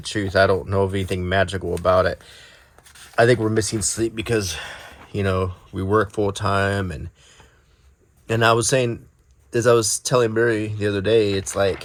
truth, I don't know of anything magical about it. I think we're missing sleep because we work full time, and I was saying, as I was telling Mary the other day, it's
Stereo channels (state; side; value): identical; both; correlation 1.00